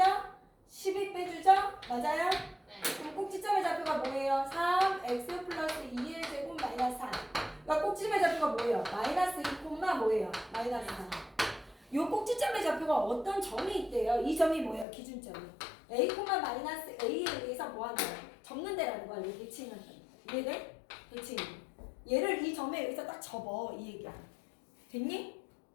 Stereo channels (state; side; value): drops out; right; at 14.9 s